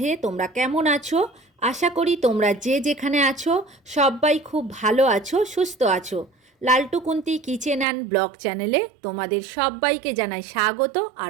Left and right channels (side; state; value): left; drops out; at 7.9 s